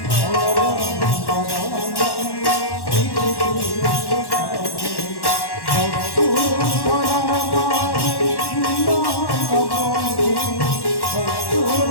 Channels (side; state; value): right; late; 1.1 ms